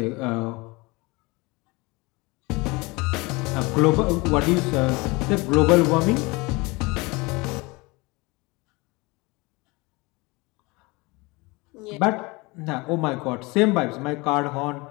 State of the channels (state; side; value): quieter; right; 24.8 dB